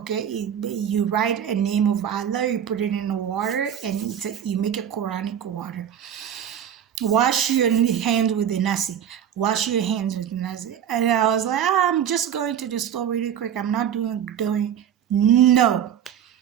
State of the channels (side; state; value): left; quieter; 9.3 dB